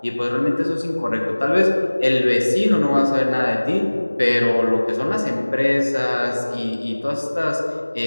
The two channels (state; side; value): inverted; both; correlation -1.00